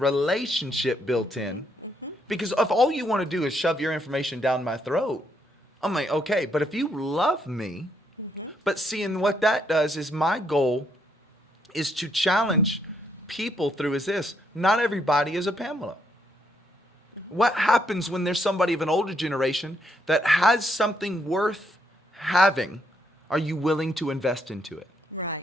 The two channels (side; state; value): both; normal; correlation 0.74